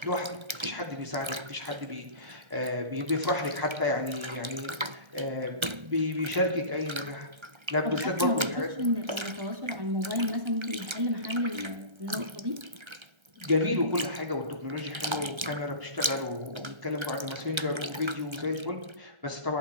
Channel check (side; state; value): left; late; 1.3 ms